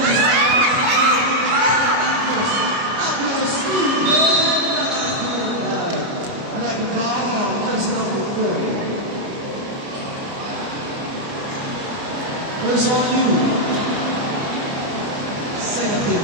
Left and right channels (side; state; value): left; late; 29 ms